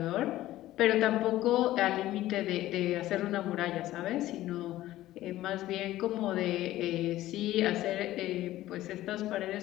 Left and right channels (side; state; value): right; quieter; 15.1 dB